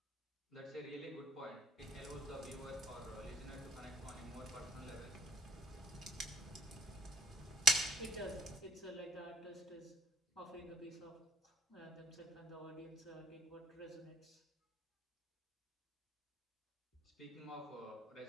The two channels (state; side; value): normal; both; correlation 0.63